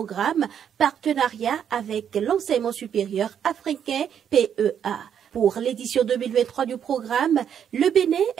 Partenariat avec l'enseignement supérieur africain PEA. Pour l'édition 2023 du programme, le Bénin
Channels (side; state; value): left; quieter; 8.6 dB